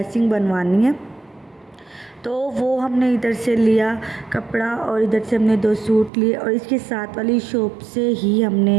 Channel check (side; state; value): left; drops out; at 6.1 s